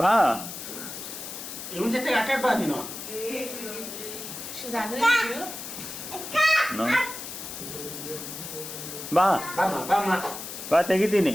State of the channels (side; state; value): left; noise; hiss, 9 dB below the sound